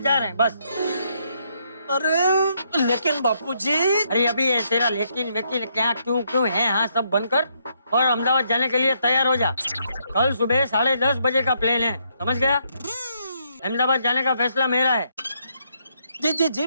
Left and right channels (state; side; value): inverted; both; correlation -0.74